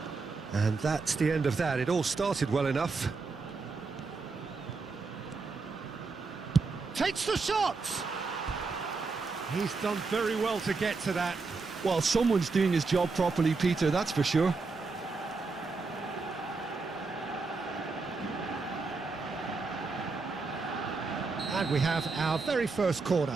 And that's the end of that. It all started well enough. Takes the shot! He's done very well to get to that. Well, someone's doing his job properly, Peter, that's for sure. And we have our very first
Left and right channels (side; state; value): left; quieter; 4.2 dB